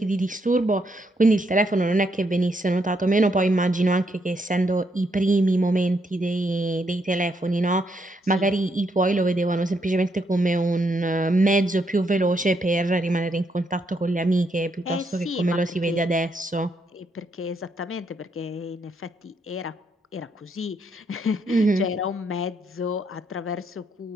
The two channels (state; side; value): normal; both; correlation 0.76